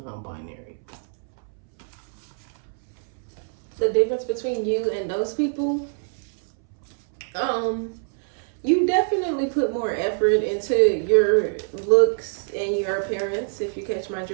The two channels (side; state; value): left; silent; 62 dB below the other